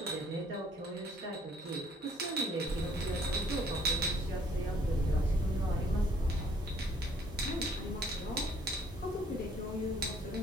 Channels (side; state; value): both; normal; correlation 0.62